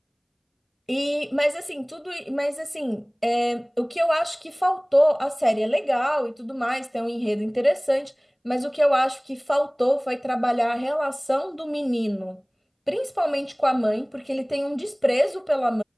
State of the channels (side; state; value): both; identical; correlation 1.00